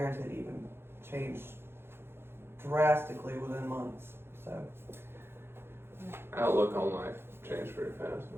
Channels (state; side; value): late; left; 0.11 ms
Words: even changed drastically within months. So Outlook on life changed pretty fast.